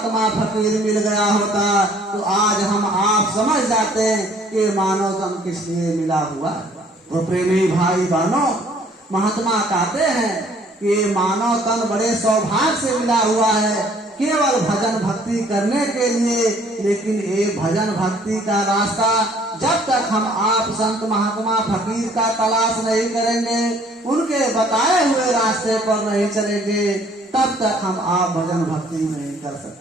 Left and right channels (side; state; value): both; normal; correlation 0.59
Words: फकीर मिल गया होता तो आज हम आप समझ जाते कि मानव तन किस लिए मिला हुआ है। तो प्रेमी भाई बहनों, महात्मा कहते हैं कि मानव तन बड़े सौभाग्य से मिला हुआ है केवल भजन भक्ति करने के लिए। लेकिन ये भजन भक्ति का रास्ता जब तक हम आप संत महात्मा फकीर का तलाश नहीं करेंगे, उनके बताए हुए रास्ते पर नहीं चलेंगे, तब तक हम आप भजन भक्ति नहीं कर